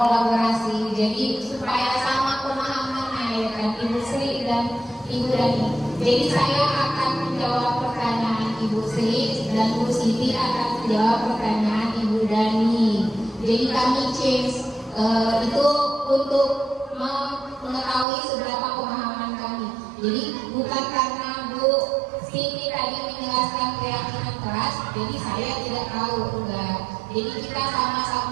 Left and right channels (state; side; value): drops out; left; at 18.1 s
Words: jadi supaya sama pemahamannya ya kan Ibu Sri dan Ibu Dani. Jadi saya akan menjawab pertanyaan Ibu Sri dan Bu Siti akan menjawab pertanyaan Ibu Dani. Jadi kami change itu untuk mengetahui seberapa pemahaman kami. Jadi bukan karena Bu Siti tadi menjelaskan keyakinan kelas, jadi saya tidak tahu, enggak. Jadi kita